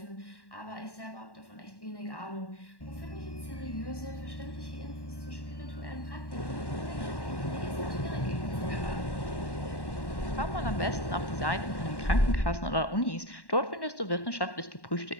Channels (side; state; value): right; late; 1.1 ms